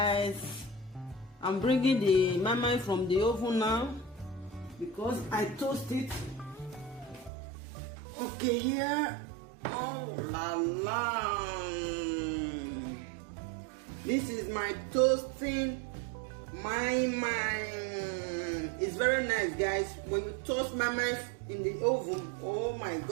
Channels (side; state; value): left; drops out; at 7.3 s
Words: I'm bringing the marmite from the oven now because I toast it. Okay, here. Oh la la. This is my toasting marmite. It's very nice guys. When you toast marmite in the oven, oh my